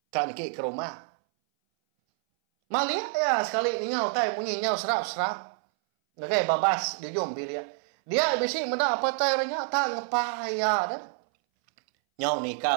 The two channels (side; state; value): left; silent; 60 dB below the other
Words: Kan niki ke rumah. Malia ya sekali nyau tai bunyi nyau serap-serap. Nagai babas di ujung bilik. Dia bisi meda apa itu airnya tak ngepaya dah. Nyau